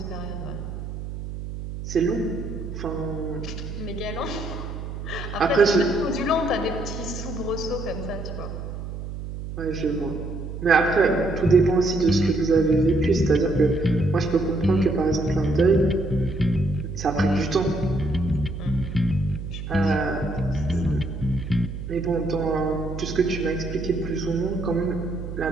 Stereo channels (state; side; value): noise; right; hum, 8 dB below the sound